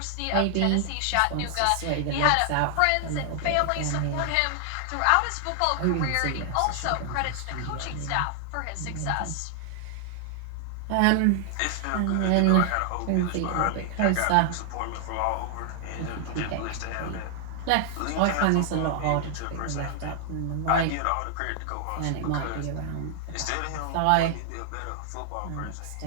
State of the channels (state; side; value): different; both; correlation 0.00